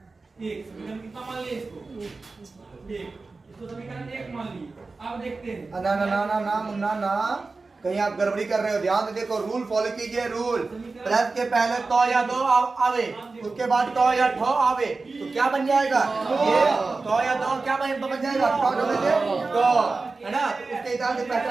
1। समीकरण कितना मान लिए इसको? 1। इसको समीकरण 1 मान लिए। अब देखते हैं। ना ना ना ना ना मुन्ना ना, कहीं आप गड़बड़ी कर रहे हो। ध्यान से देखो, रूल फॉलो कीजिए। रूल प्लस के पहले तो या दो आवे, उसके बाद तो या ठो आवे, तो क्या बन जाएगा? ये तो या दो क्या बन जाएगा? ठो डबल से तो, है ना? उसके हिसाब से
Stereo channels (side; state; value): left; quieter; 3.8 dB